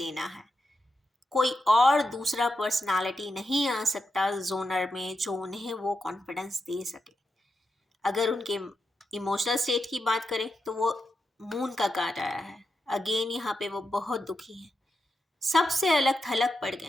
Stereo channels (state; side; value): normal; both; correlation 0.87